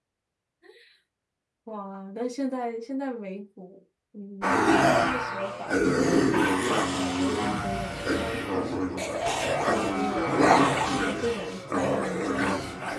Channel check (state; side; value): identical; both; correlation 1.00